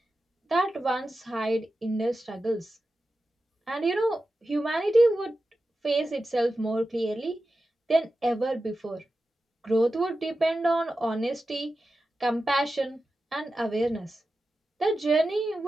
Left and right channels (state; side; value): normal; both; correlation 0.92